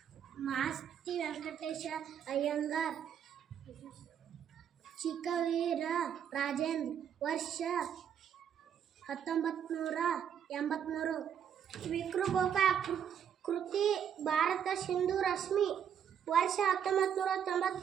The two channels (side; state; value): left; quieter; 8.6 dB